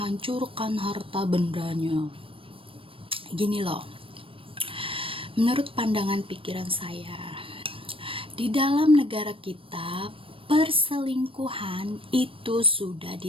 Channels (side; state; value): left; late; 0.26 ms